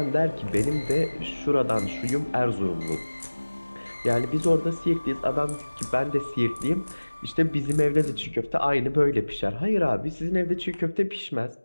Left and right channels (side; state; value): both; inverted; correlation -1.00